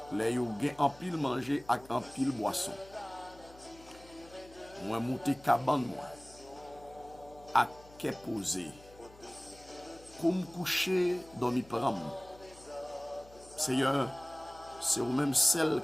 Les yo gen en pile manger avec en pile boisson. Moi monter cabane moi. À qu'est posé. Comme coucher dormi pram. Seigneur, c'est ou même celle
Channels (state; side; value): noise; left; hum, 22 dB below the sound